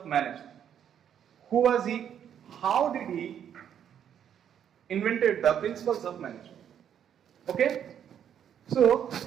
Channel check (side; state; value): left; quieter; 9.1 dB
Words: management. Who was he? How did he invented the principles of management. Okay, so